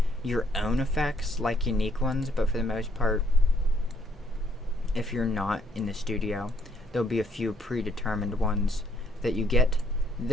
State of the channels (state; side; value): normal; both; correlation 0.68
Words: your own effects, like unique ones, but for the most part, if you're not in the studio, there'll be a few predetermined ones that you get.